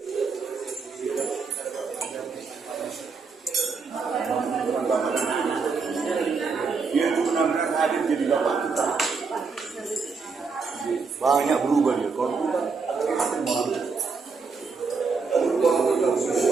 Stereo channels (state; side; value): quieter; left; 4.8 dB